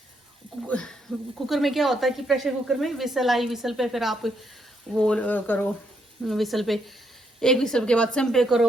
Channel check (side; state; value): both; normal; correlation 0.76